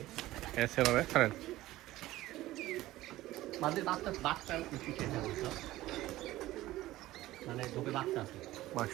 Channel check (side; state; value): left; quieter; 16.4 dB